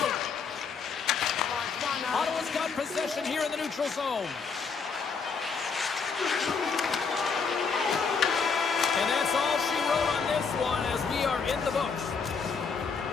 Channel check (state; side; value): quieter; right; 5.4 dB